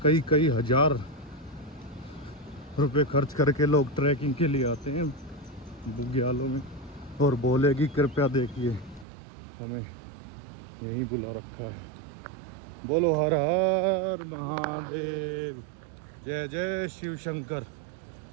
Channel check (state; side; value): drops out; left; at 9.1 s